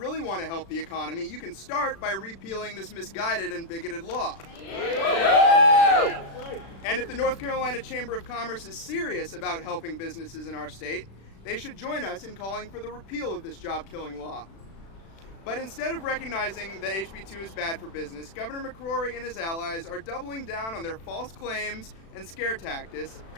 want to help the economy, you can start by repealing this misguided and bigoted law. And if the North Carolina Chamber of Commerce is serious about helping businesses in our state, they should join us in calling for the repeal of this job-killing law. But instead of recognizing that HB 2 is bad for business, Governor McCrory and his allies are doubling down on their false claims and scare tactics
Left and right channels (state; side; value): late; right; 36 ms